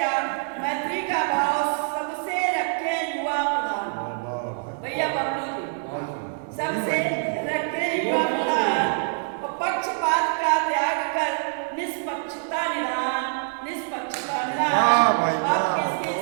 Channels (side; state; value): left; silent; 62 dB below the other